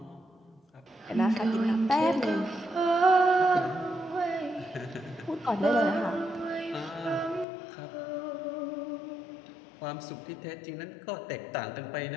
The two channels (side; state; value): right; drops out; at 7.5 s